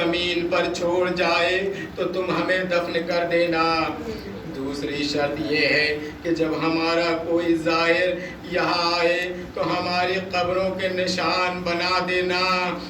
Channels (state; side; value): identical; both; correlation 1.00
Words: پر چھوڑ جائے تو تم ہمیں دفن کر دینا. دوسری شرط یہ ہے کہ جب ہمارا کوئی زائر یہاں آئے تو ہماری قبروں کے نشان بتا